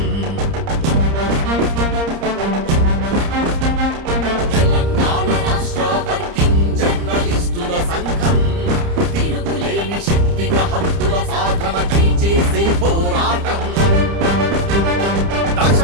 తెలంగాణ రాష్ట్ర వర్కింగ్ జర్నలిస్టుల సంఘం తిరుగులేని శక్తిగా హక్కుల సాధనకై చేసే పోరాటం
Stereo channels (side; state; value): left; late; 30 ms